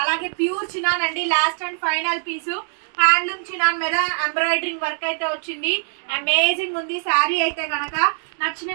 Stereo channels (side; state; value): left; silent; digital silence